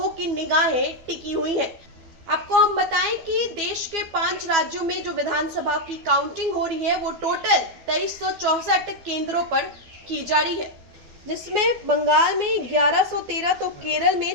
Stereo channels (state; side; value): late; left; 12 ms